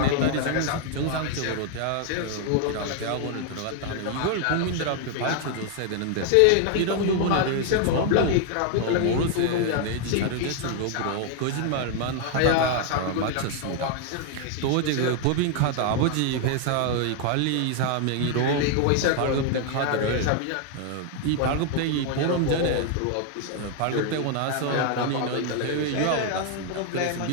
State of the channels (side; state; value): both; different; correlation 0.00